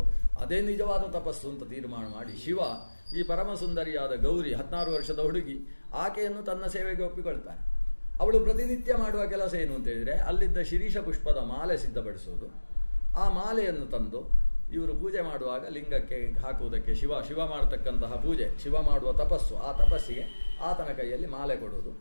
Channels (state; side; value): inverted; both; correlation -1.00